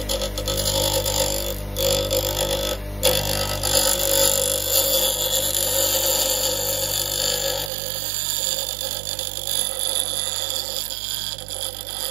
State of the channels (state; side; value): drops out; left; at 7.7 s